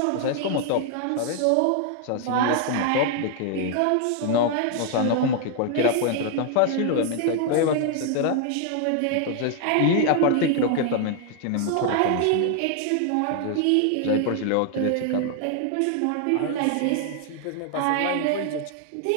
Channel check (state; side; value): different; both; correlation 0.00